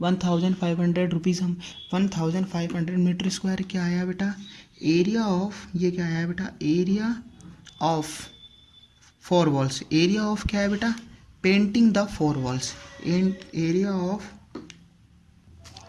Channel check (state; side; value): identical; both; correlation 1.00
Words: 1,500 रुपीज़, हम 1,500 मीटर स्क्वायर क्या आया बेटा एरिया ऑफ, ये क्या आया बेटा area of 4 walls, area of क्या है बेटा painting the 4 walls, area of,